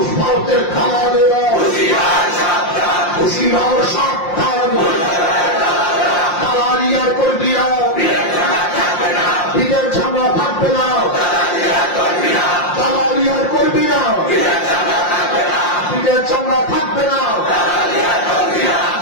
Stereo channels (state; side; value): late; right; 5.7 ms